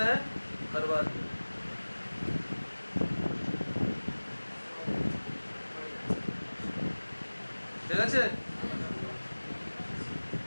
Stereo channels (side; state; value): both; inverted; correlation -1.00